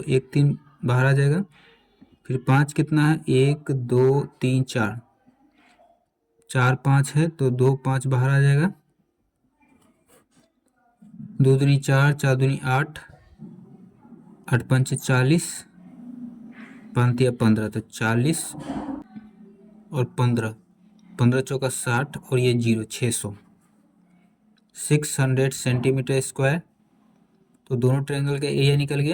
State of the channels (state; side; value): identical; both; correlation 1.00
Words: 1 3 बाहर आ जाएगा। फिर 5 कितना है, 1 2 3 4, 4 5 है, तो 2 5 बाहर आ जाएगा। 2 दूनी 4 4 दूनी 8 8 5 40, 5 या 15, तो 40 और 15, 15 चौका 60 और ये 0 600 सेंटीमीटर स्क्वायर। तो दोनों ट्रायंगल का एरिया निकल